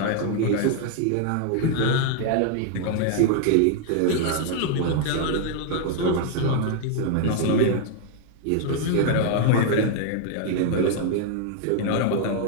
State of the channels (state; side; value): different; both; correlation 0.00